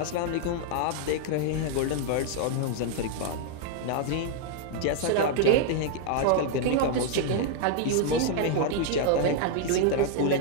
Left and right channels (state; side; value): different; both; correlation 0.00